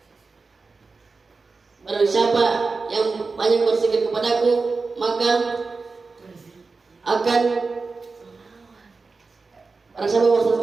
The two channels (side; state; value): left; quieter; 4.2 dB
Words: barang siapa yang banyak berzikir kepadaku, maka akan barang siapa berzikir